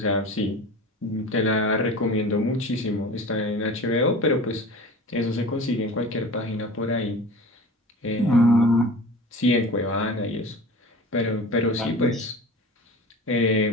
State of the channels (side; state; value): both; normal; correlation 0.36